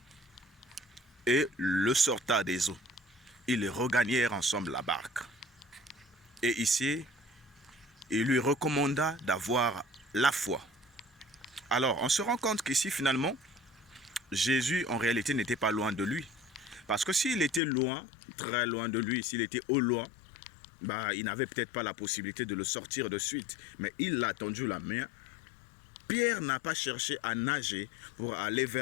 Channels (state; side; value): drops out; right; at 17.6 s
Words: et le sorta des eaux. Ils regagnèrent ensemble la barque. Et ici, il lui recommanda d'avoir la foi. Alors, on se rend compte qu'ici, finalement, Jésus, en réalité, n'était pas loin de lui. Parce que s'il était loin, très loin de lui, s'il était au loin, bah, il n'avait peut-être pas la possibilité de le sortir de suite. Mais il l'a tendu la main. Pierre n'a pas cherché à nager pour aller